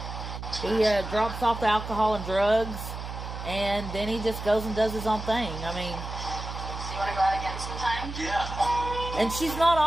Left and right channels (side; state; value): right; noise; hum, 8 dB below the sound